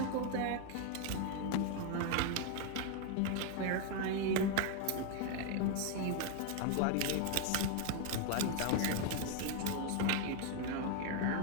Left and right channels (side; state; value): both; different; correlation 0.01